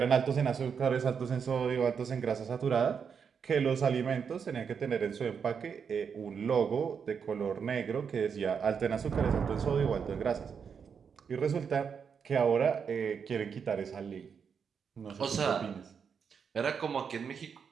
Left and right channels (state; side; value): quieter; left; 6.6 dB